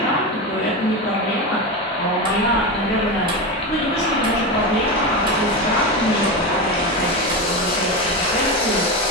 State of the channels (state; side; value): normal; both; correlation 0.18